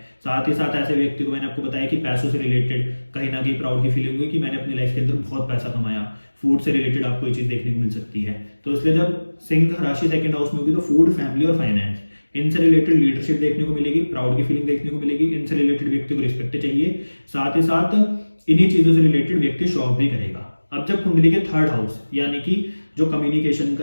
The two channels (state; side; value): inverted; both; correlation -1.00